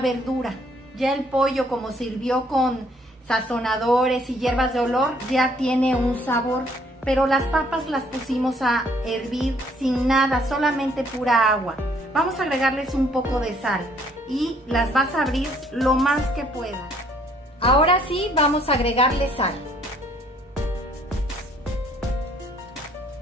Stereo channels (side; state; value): both; normal; correlation 0.63